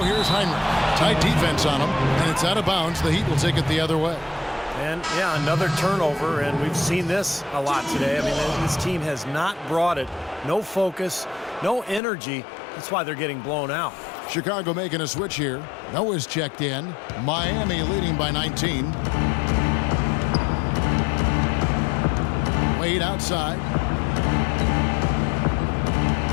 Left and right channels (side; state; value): right; drops out; at 12.0 s